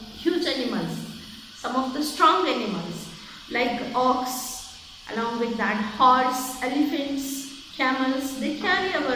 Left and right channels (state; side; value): identical; both; correlation 1.00